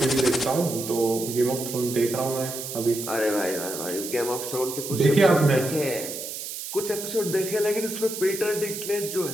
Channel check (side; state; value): right; noise; hiss, 7 dB below the sound